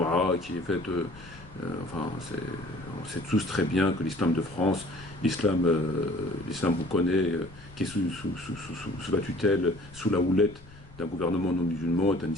qui est faite. Enfin, on sait tous très bien que l'islam de France, l'islam vous connaît, qui est sous la tutelle, sous la houlette d'un gouvernement non musulman, est un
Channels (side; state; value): left; noise; rumble, 21 dB below the sound